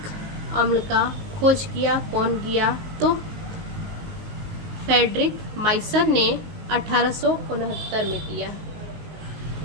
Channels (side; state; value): left; late; 19 ms